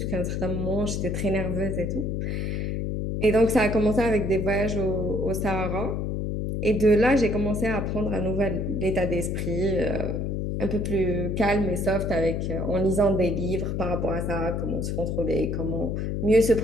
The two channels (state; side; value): noise; left; hum, 1 dB below the sound